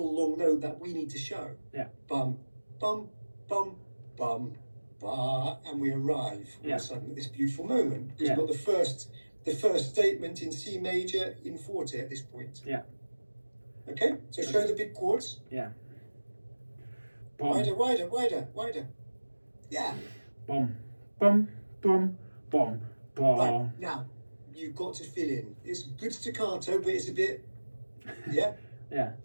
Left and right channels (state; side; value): inverted; both; correlation -1.00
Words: long note that we need to show. Yeah. Bum, bum, bum, bum, ba, and we arrive all of a sudden at this beautiful moment. Because we've got the first statement in C major in forte at this point. Yeah. Okay. So show the big chords. Yeah. Wider, wider, wider, wider. Yeah. Bum, bum, bum, bum, bum. Right, now, you've got to fill in. It's good staccato, but it's a bit, yeah? Yeah.